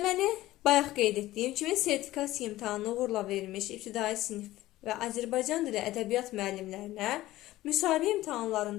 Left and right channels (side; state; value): right; quieter; 16.2 dB